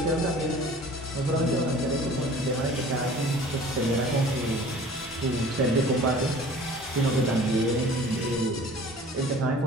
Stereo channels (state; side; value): normal; both; correlation 0.47